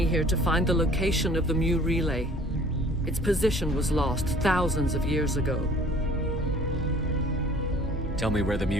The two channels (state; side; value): normal; both; correlation 0.51